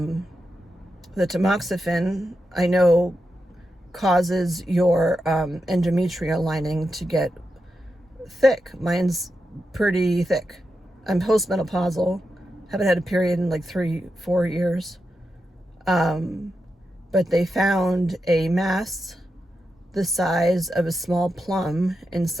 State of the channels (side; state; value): both; normal; correlation 0.88